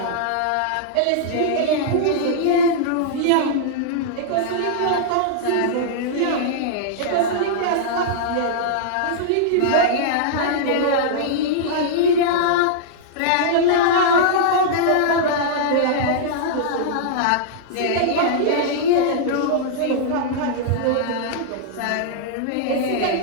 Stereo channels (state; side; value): different; both; correlation -0.02